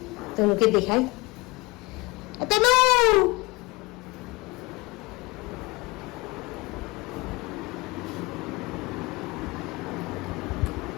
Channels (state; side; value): quieter; right; 23.3 dB